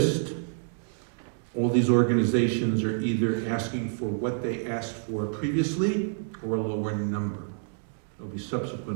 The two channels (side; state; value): left; silent; digital silence